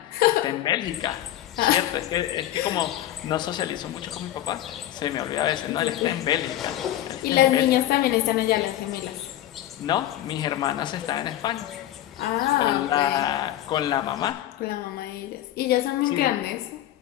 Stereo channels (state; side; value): quieter; right; 13.3 dB